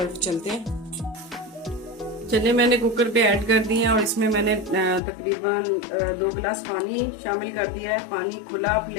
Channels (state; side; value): drops out; right; at 5.0 s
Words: चलते हैं। चने मैंने कुकर पे ऐड कर दिए हैं और इसमें मैंने तकरीबन 2 गिलास पानी शामिल कर दिया है। पानी खुला आप